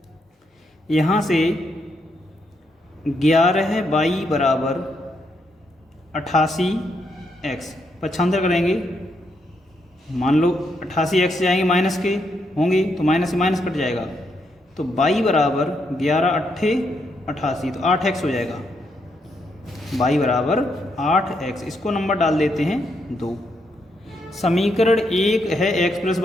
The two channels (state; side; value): normal; both; correlation 0.78